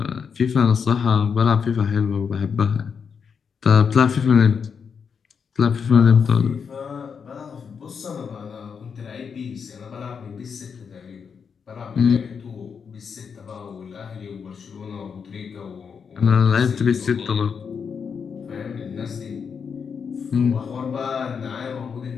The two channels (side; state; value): right; quieter; 6.4 dB